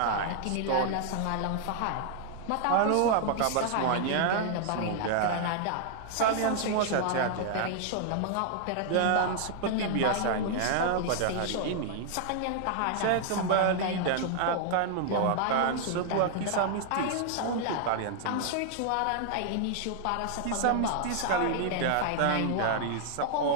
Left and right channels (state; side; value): different; both; correlation 0.00